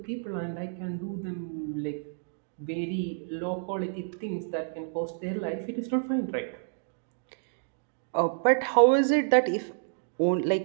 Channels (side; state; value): left; silent; digital silence